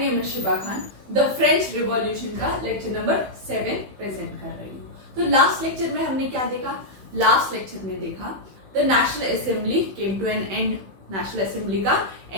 is Shiba Khan. The French revolution का lecture number 7 present कर रही हूँ। तो लास्ट लेक्चर में हमने क्या देखा? लास्ट लेक्चर में देखा the national assembly came to an end. National assembly का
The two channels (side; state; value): left; late; 16 ms